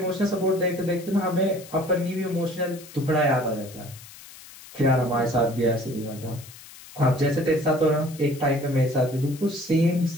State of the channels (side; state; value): left; noise; hiss, 18 dB below the sound